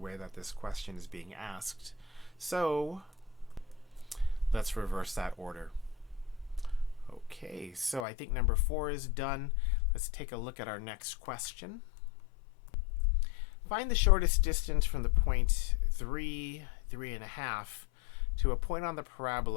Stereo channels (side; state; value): right; drops out; at 8.1 s